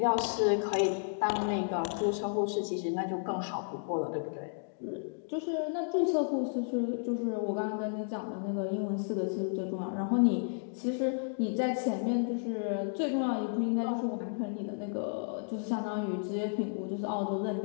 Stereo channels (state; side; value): silent; right; digital silence